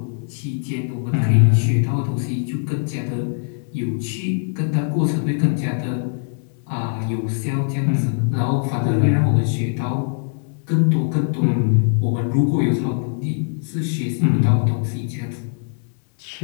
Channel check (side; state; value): right; silent; 65 dB below the other